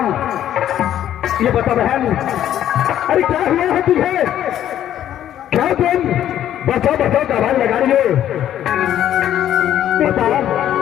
ये बता बहन, अरे क्या हुआ है तुझे? क्या तुम बचाओ बचाओ का आवाज लगा रही हो? बता।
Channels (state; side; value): quieter; right; 11.3 dB